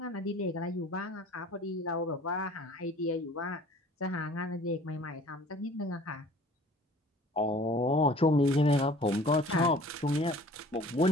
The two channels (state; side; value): normal; both; correlation 0.49